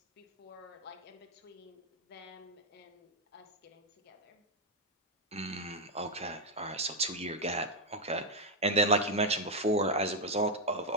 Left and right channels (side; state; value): both; normal; correlation 0.02